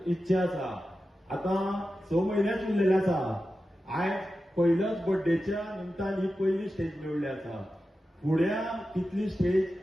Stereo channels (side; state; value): both; normal; correlation 0.92